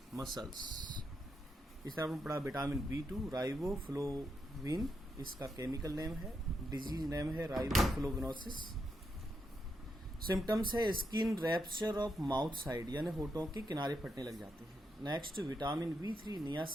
muscles. इस तरह आपने पढ़ा विटामिन B2 राइबोफ्लोविन, इसका केमिकल नेम है, डिजीज नेम है राइबोफ्लोविनोसिस। सिम्टम्स है skin rupture of mouth side, यानी होठों के किनारे फटने लग जाते हैं। Next vitamin B3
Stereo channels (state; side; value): normal; both; correlation 0.82